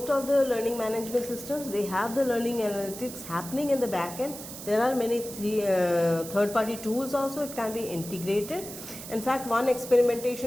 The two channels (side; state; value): right; noise; hiss, 12 dB below the sound